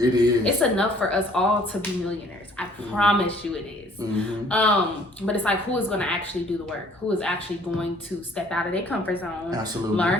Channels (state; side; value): normal; both; correlation 0.58